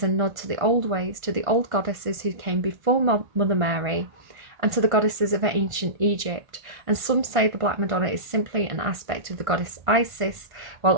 a nod to the old ways, to the old goddesses who came before Mother Mary, and to the goddesses of ancient Egypt. And some say the Black Madonna is simply an aspect of the goddess Isis, while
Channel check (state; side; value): late; left; 1.5 ms